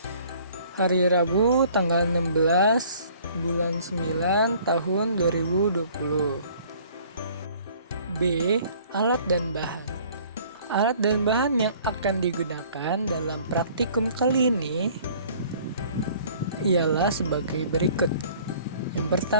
hari Rabu tanggal 16 bulan 9 tahun 2020. B. Alat dan bahan. Alat dan bahan yang akan digunakan dalam praktikum kali ini ialah sebagai berikut. Yang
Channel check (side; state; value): both; inverted; correlation -0.54